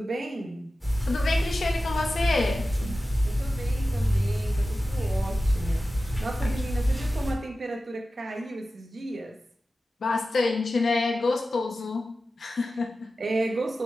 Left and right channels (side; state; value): both; normal; correlation 0.94